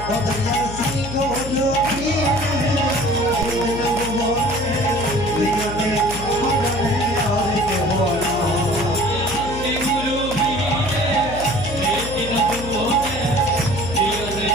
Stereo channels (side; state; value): left; noise; hum, 10 dB below the sound